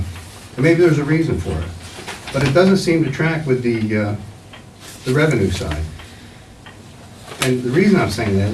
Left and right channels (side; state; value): both; identical; correlation 1.00